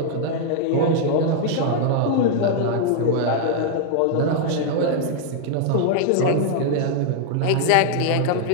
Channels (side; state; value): both; different; correlation 0.00